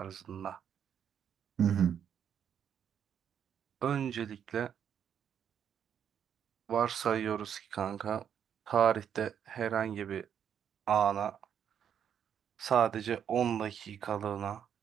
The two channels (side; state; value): left; quieter; 8.6 dB